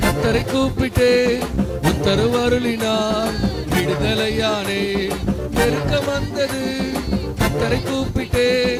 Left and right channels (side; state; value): both; identical; correlation 1.00